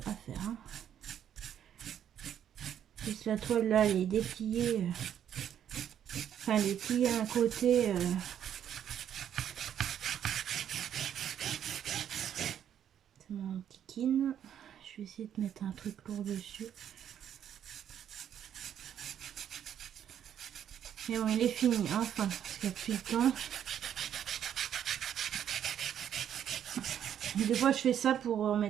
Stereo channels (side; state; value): left; quieter; 9.6 dB